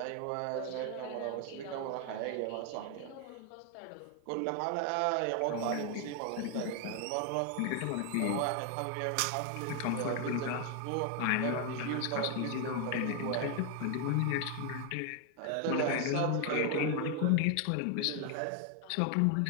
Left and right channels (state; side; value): different; both; correlation 0.01